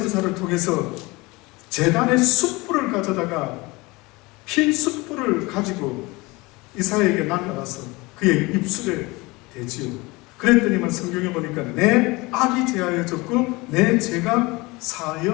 통해서 제단의 숯불을 가져다가 핀 숯불을 가지고 이사야에게 날라가서 그의 입술에 대지요. 그랬더니만 성경에 보니까 내 악이 제하여졌고 내 죄가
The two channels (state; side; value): quieter; right; 23.5 dB